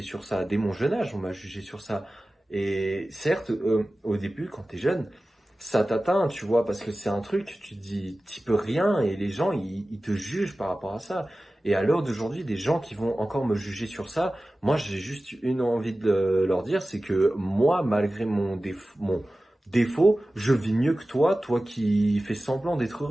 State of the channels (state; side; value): normal; both; correlation 0.96